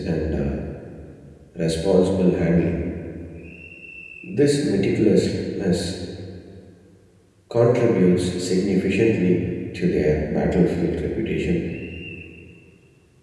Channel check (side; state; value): both; identical; correlation 1.00